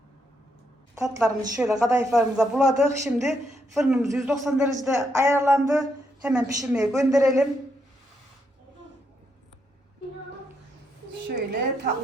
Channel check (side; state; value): both; normal; correlation 0.78